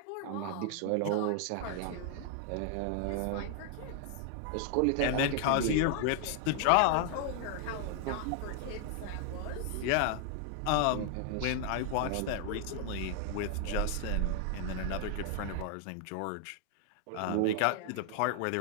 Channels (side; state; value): both; different; correlation 0.00